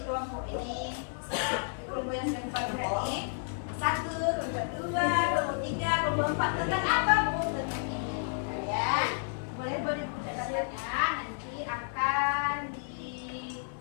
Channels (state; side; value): silent; right; 57 dB below the other